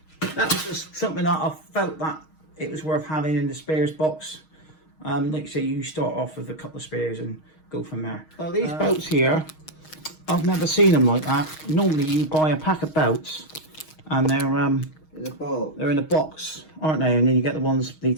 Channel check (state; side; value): late; right; 6.4 ms